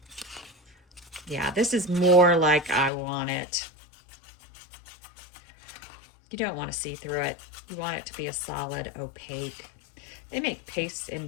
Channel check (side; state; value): right; drops out; at 2.9 s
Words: Yeah, this is more like I want it. You don't want to see through it. You want it to be a solid opaque. They make pastes